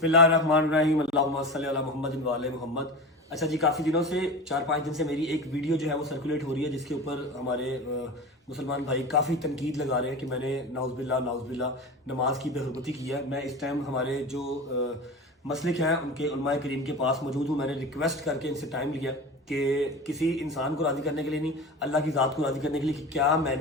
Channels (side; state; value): both; normal; correlation 0.29